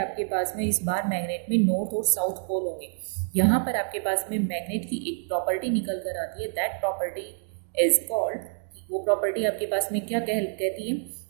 पास में इस बार मैग्नेट में नॉर्थ और साउथ पोल होंगे। यहाँ पर आपके पास में मैग्नेट की एक प्रॉपर्टी निकल कर आती है, दैट प्रॉपर्टी इज कॉल्ड, वो प्रॉपर्टी आपके पास में क्या कहती है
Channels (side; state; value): left; silent; digital silence